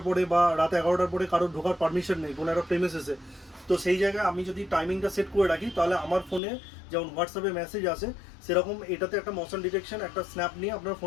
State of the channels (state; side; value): drops out; right; at 6.4 s